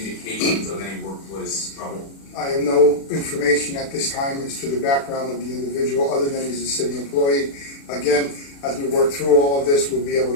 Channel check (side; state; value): right; late; 36 ms